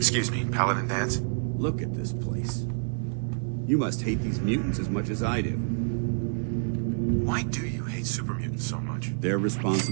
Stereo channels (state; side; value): silent; left; digital silence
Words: me, Paladin Dance? Look at this place. You must hate these mutants as much as I do. Why do you hate super mutants so much? They're